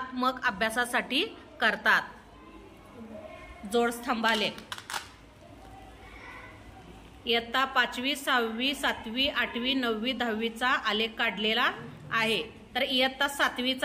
अभ्यासासाठी करतात. जोडस्तंभालेख इयत्ता 5वी 6वी 7वी 8वी 9वी 10वीचा आलेख काढलेला आहे. तर इयत्ता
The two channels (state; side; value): identical; both; correlation 1.00